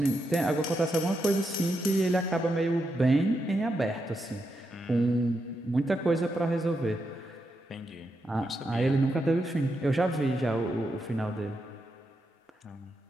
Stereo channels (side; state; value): both; normal; correlation 0.84